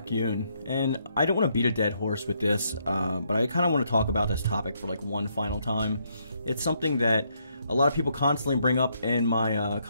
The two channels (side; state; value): both; inverted; correlation -0.74